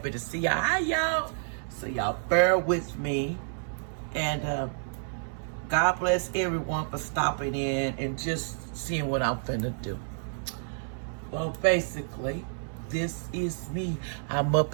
to see y'all. Hi, y'all. So y'all bear with me. And God bless everyone for stopping in and just seeing what I'm finna do. Well, basically, this is me. I'm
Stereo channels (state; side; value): silent; left; 58 dB below the other